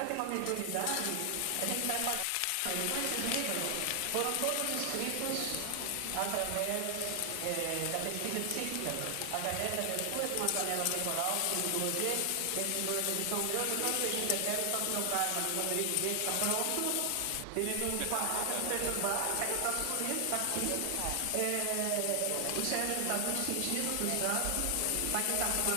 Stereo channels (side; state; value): both; different; correlation 0.00